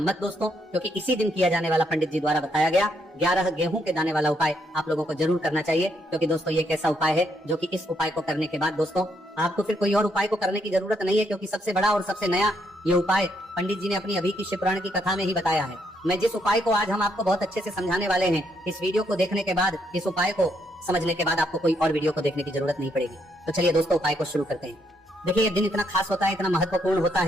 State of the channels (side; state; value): both; normal; correlation 0.74